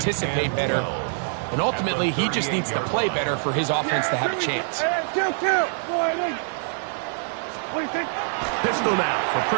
better. And ultimately, he just needs to play better for his offense to have a chance. Pistol now for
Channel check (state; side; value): silent; left; 55 dB below the other